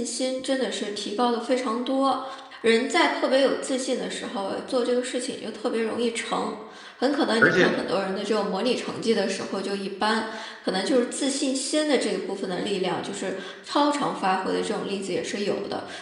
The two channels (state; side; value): identical; both; correlation 1.00